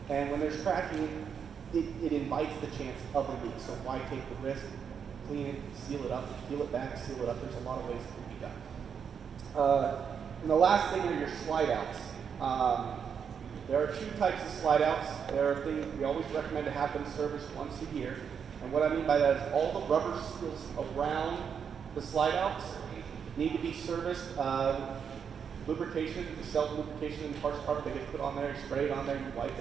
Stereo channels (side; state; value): left; quieter; 7.1 dB